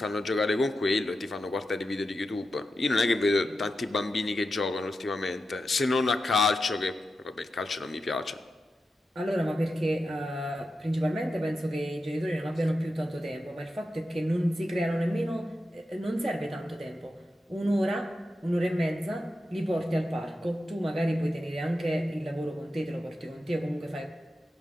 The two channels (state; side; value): normal; both; correlation 0.90